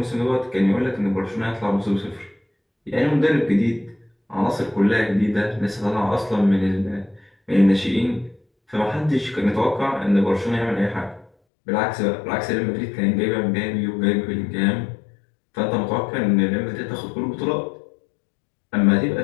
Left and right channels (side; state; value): right; drops out; at 11.3 s